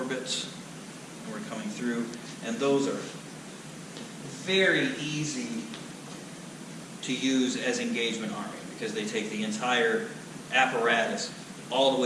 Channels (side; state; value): both; identical; correlation 1.00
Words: We're coming through, and those are very easy to use as engagement arming because they take the entire apparatus all the